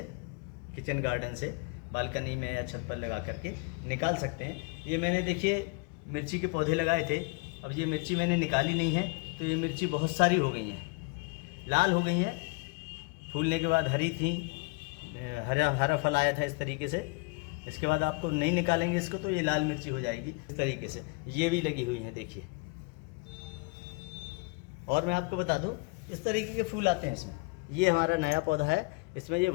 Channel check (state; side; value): quieter; right; 27.2 dB